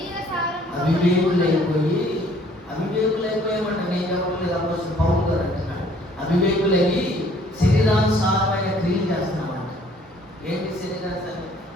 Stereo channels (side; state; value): both; normal; correlation 0.58